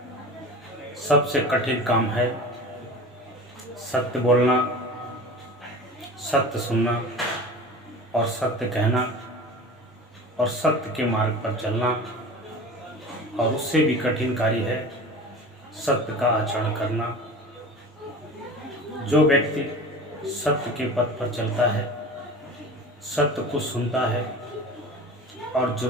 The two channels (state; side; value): normal; both; correlation 0.36